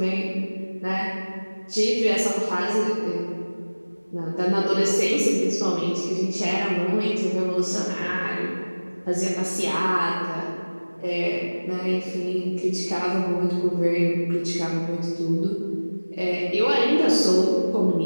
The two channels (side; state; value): both; inverted; correlation -1.00